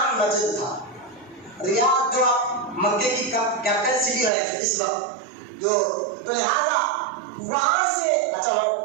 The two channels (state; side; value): drops out; left; at 4.3 s